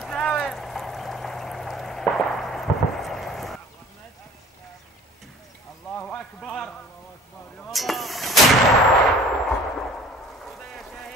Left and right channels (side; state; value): both; normal; correlation 0.48